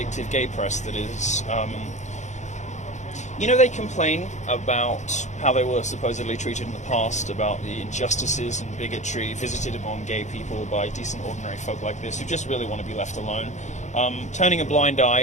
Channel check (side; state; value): right; late; 0.34 ms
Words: gay press that is... you know, they complain about how they were supposedly treated in the past, about the injustices and bigotry visited upon gay people by decent, ordinary folk like this who just really want to be left alone, turning a blind